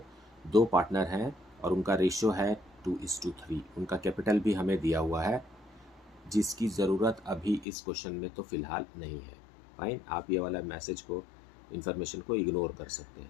दो partner हैं और उनका ratio है 2:3। उनका capital भी हमें दिया हुआ है, जिसकी ज़रूरत अभी इस क्वेश्चन में तो फ़िलहाल नहीं है। फाइन, आप ये वाला मैसेज को, इन्फॉर्मेशन को इग्नोर कर सकते हैं।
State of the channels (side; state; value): right; drops out; at 7.7 s